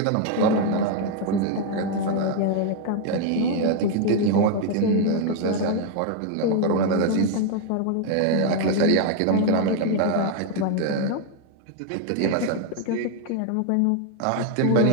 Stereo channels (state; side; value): different; both; correlation 0.01